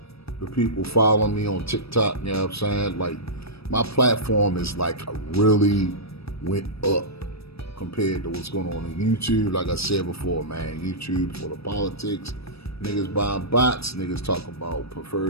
people following me on TikTok, you know what I'm saying? Like, my platform is like really went up compared to what's going on YouTube. Like I said before, man, YouTube for the politics. Niggas buying bots, niggas talk about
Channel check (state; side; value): late; right; 0.78 ms